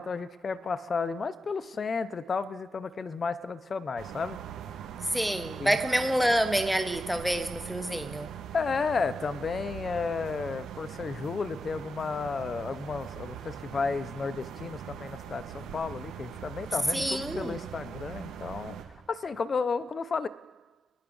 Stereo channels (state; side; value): normal; both; correlation 0.88